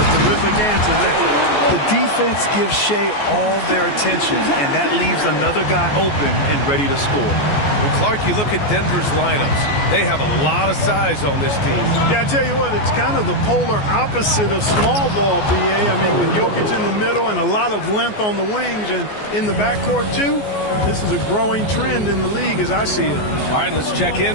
terrific answer there. The defense gives Shea all their attention, and that leaves another guy open and ready to score. Well, Clark, you look at Denver's lineups. They have a lot of size on this team. Yeah, I tell you what, it's kind of the polar opposite of small ball, BA. I mean, with Jokic in the middle and a lot of length on the wings and in the backcourt, too, this is a growing trend in the league as I see it. All right, let's check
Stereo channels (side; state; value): right; late; 14 ms